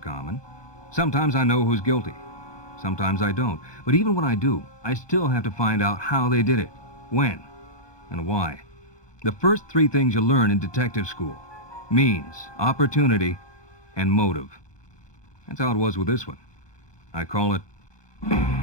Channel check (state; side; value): late; right; 1.2 ms